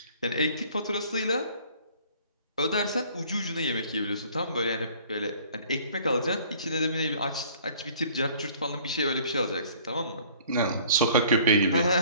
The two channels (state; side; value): inverted; both; correlation -0.54